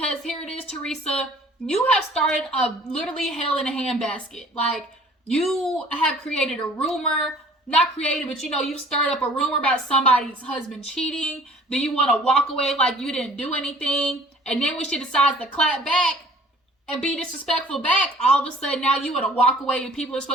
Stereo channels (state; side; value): normal; both; correlation 0.52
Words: here it is, Teresa, you have started a literally hell in a handbasket. You have created a rumor, not created, but you've stirred up a rumor about somebody's husband cheating. Then you want to walk away like you didn't do anything. And then when she decides to clap back and be disrespectful back, all of a sudden now you want to walk away and people are